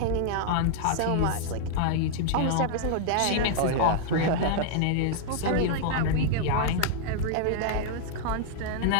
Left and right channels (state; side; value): different; both; correlation -0.01